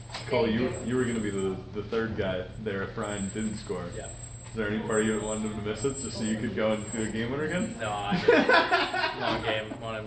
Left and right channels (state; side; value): identical; both; correlation 1.00